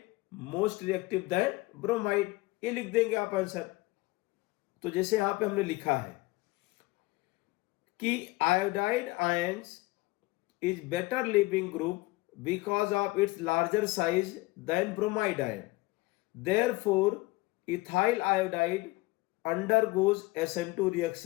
most reactive then bromide, ये लिख देंगे आप आंसर। तो जैसे यहां पे हमने लिखा है कि iodide ions is better leaving group because of its larger size than bromide ion, therefore ethyl iodide undergoes SN2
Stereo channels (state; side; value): quieter; right; 21.4 dB